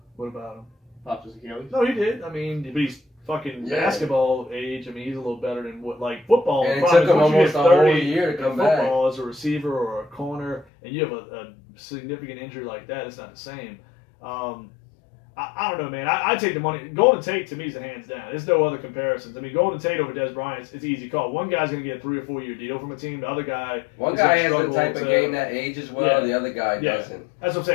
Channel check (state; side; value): drops out; right; at 10.7 s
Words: What about him? Popped his Achilles? No, he did. But he's fucking basketball age. He's a little better than football. And it took him almost a whole year to come back. Football as a receiver or a corner, and you have a significant injury like that, it's not the same. I don't know, man. I take the money. Golden Tate, to me, is a hands down. There's no other comparisons. Golden Tate over Dez Bryant, it's an easy call. One guy's going to get a 3 or 4 year deal from a team. The other guy... One guy has the type of game that ages well. The other guy doesn't. That's what I'm